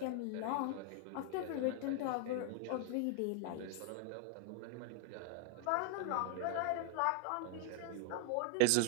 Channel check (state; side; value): different; both; correlation 0.00